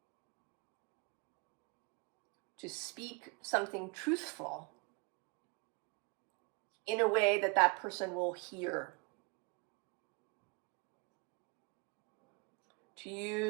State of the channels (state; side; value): quieter; left; 30.0 dB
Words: To speak something truthful in a way that that person will hear to